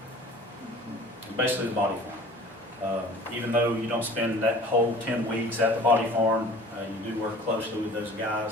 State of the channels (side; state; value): both; normal; correlation 0.46